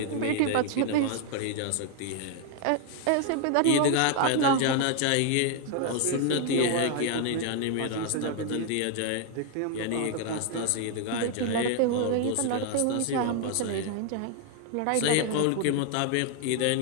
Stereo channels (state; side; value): different; both; correlation 0.00